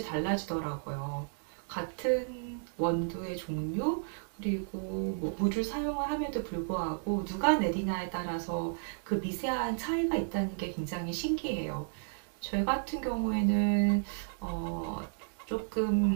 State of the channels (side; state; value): left; silent; digital silence